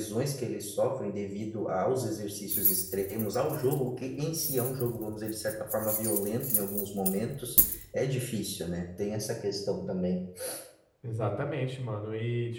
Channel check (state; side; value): identical; both; correlation 1.00